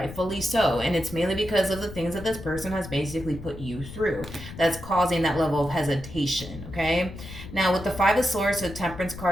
so. And it's mainly because of the things that this person has basically put you through that's causing that level of hesitation, okay? Now, with the Five of Swords, the Temperance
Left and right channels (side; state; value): left; noise; rumble, 13 dB below the sound